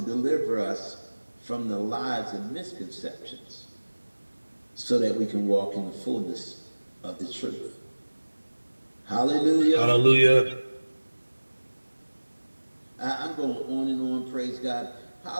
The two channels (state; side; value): inverted; both; correlation -1.00